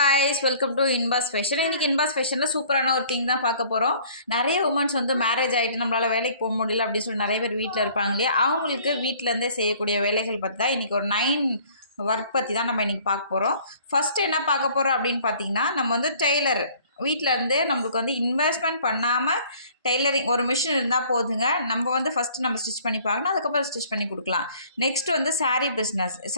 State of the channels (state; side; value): inverted; both; correlation -0.55